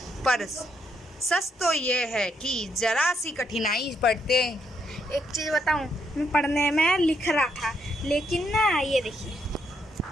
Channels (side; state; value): both; normal; correlation 0.76